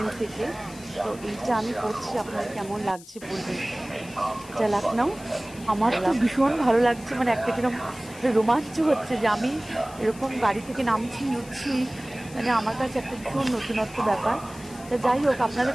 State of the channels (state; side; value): noise; left; hiss, 19 dB below the sound